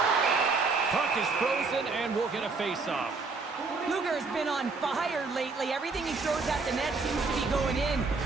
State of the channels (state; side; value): quieter; left; 4.1 dB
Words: Puck is frozen and we'll get a face-off. Luger has been on fire lately. Everything he throws at the net seems to be going in.